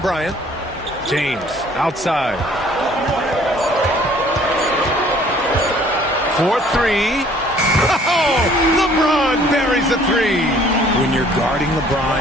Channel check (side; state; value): both; normal; correlation 0.57